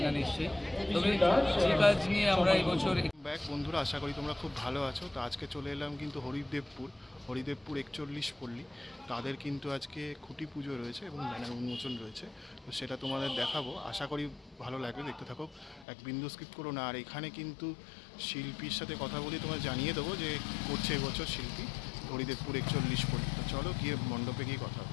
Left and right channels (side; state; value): right; drops out; at 15.9 s